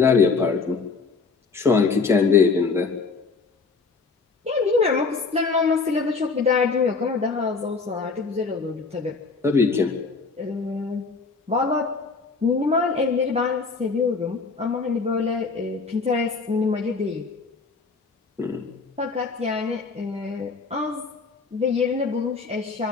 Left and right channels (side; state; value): right; quieter; 4.6 dB